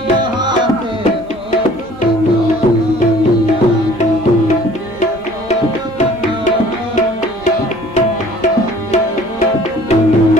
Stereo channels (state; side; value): normal; both; correlation 0.52